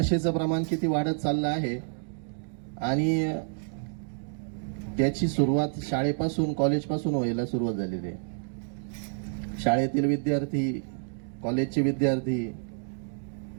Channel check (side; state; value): left; silent; 59 dB below the other